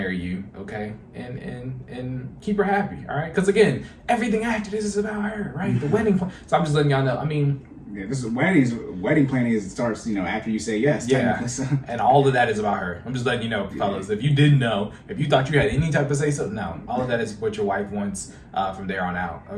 you, okay, and keep her happy, all right? Because again, everything after this is about her, right? The wedding. So I'm just letting y'all know. I mean, yeah, this is wedding planning starts, after you say yes. Yeah, so. And all of that is about her. I'm just letting you know, fellas. If you didn't know, if you thought you had any type of say so, no. All of that is what your wife wants from there on out,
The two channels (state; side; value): identical; both; correlation 1.00